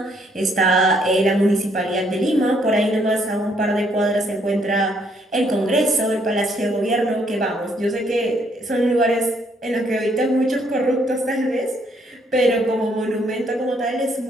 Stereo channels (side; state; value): both; normal; correlation 0.69